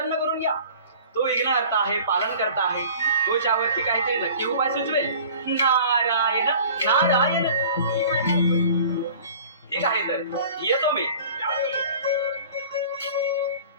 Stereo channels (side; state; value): both; inverted; correlation -0.45